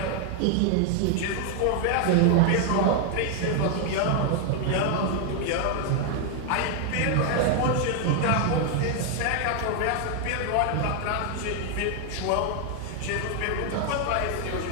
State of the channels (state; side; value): different; both; correlation 0.00